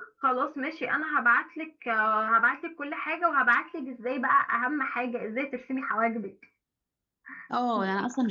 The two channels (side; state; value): both; identical; correlation 1.00